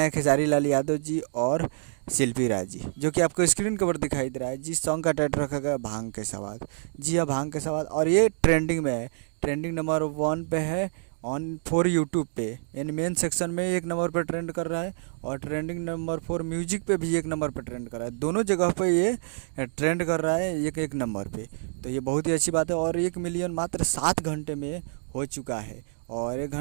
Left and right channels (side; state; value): left; silent; digital silence